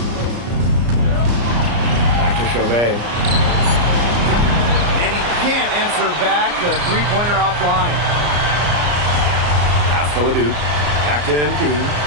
Back to Chauvet. And he can't answer back. The three-pointer offline. Pass to Ledoux. Back to MP.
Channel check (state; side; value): late; left; 34 ms